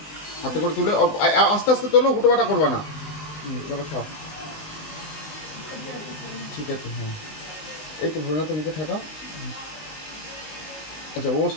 হাতে করে তুলে আস্তে আস্তে তোলো, হুটোপাটা করবা না। চলো খাও। ঠিক আছে। হ্যাঁ, এই তো ভোলেনাথ মুখে ঠেকাও। আচ্ছা, ও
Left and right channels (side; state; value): right; late; 19 ms